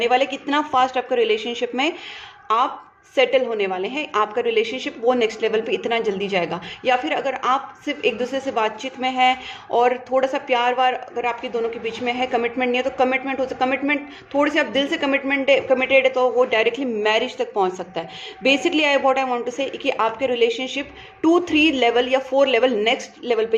वाले। कितना फास्ट आपका रिलेशनशिप में आप सेटल होने वाले हैं, आपका रिलेशनशिप वो नेक्स्ट लेवल पे इतना जल्दी जाएगा। या फिर अगर आप सिर्फ एक दूसरे से बातचीत में है और थोड़ा सा प्यार वार अगर आपके दोनों के बीच में है, कमिटमेंट नहीं है, तो कमिटमेंट हो सकता, कमिटमेंट थोड़े से आप दिल से कमिटेड है तो वो डायरेक्टली मैरिज तक पहुंच सकता है। बेसिकली आई वांट टू से कि आपके रिलेशनशिप 2 3 लेवल या 4 लेवल नेक्स्ट लेवल पे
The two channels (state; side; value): identical; both; correlation 1.00